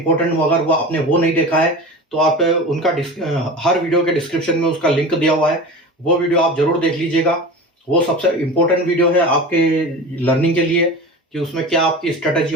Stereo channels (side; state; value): both; normal; correlation 0.32